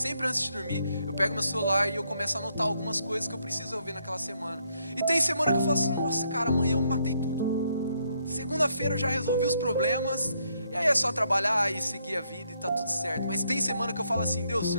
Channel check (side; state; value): both; inverted; correlation -0.74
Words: antes de dormir, eu pego meu celular e eu começo a anotar algumas coisas que eu preciso resolver naquela semana. E tem semana que eu falo assim: nossa, cara, amanhã eu matei tudo. Segunda-feira eu já resolvi os problemas, e aí é só trabalhar e seguir a vida e tá tudo certo. Mas tem semana que eu falo assim: Deus, o